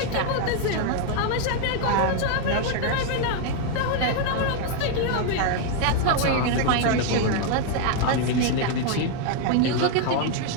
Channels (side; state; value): both; different; correlation 0.01